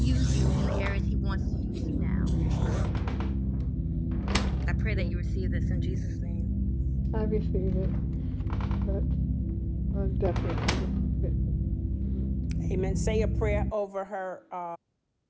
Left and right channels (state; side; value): identical; both; correlation 1.00